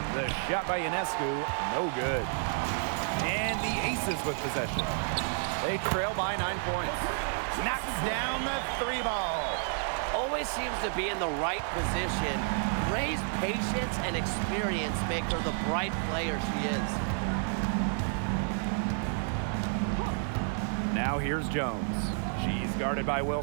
The shot by Ionescu, no good. And the Aces with possession. They trail by 9 points. Knocks down the 3 ball. Always seems to be in the right position. Gray's patience and experience make her the bright player she is. Now here's Jones. She's guarded by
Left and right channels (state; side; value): silent; left; 55 dB below the other